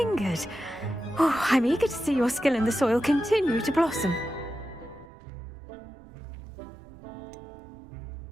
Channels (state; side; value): drops out; left; at 5.1 s